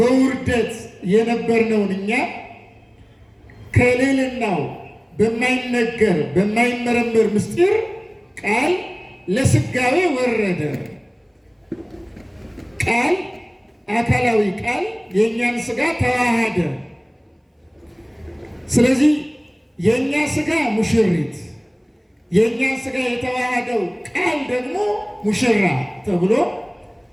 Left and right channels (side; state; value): both; identical; correlation 1.00